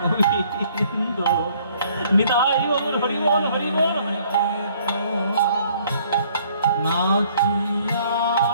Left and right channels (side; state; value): both; inverted; correlation -0.61